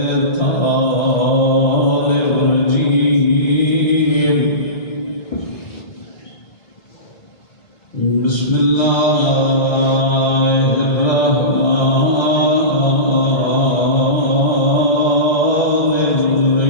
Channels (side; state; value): right; late; 1.3 ms